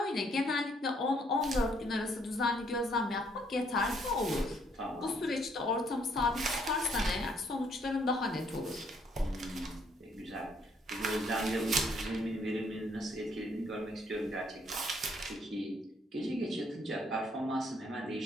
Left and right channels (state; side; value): normal; both; correlation 0.68